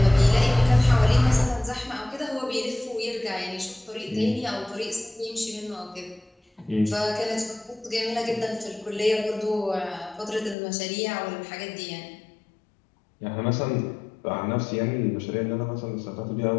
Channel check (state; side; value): drops out; right; at 10.6 s